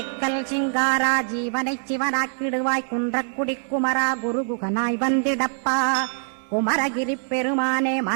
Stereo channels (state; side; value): silent; left; digital silence